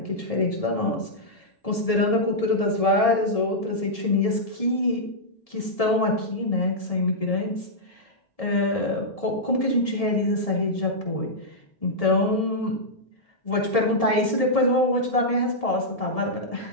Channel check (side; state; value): right; late; 1.7 ms